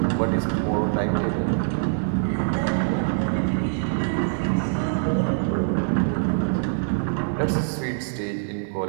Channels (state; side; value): silent; left; digital silence